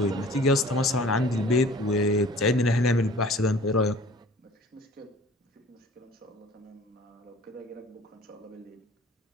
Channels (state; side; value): normal; both; correlation 0.48